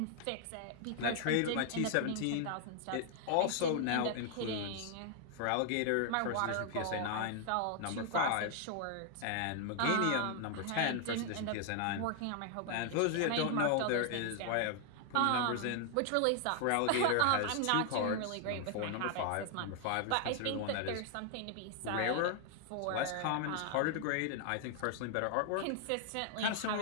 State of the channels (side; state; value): both; different; correlation 0.00